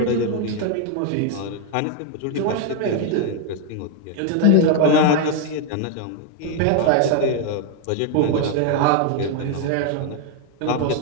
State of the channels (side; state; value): both; different; correlation 0.01